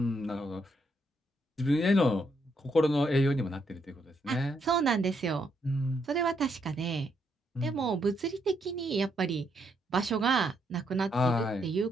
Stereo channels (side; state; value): both; normal; correlation 0.76